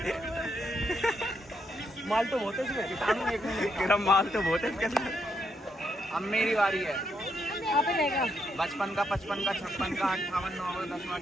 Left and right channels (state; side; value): normal; both; correlation 0.78